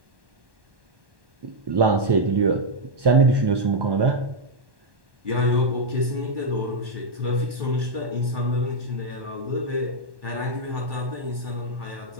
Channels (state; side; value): late; left; 1.1 ms